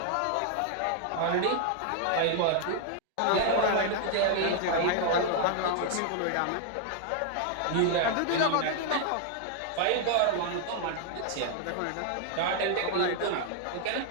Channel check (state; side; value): different; both; correlation 0.00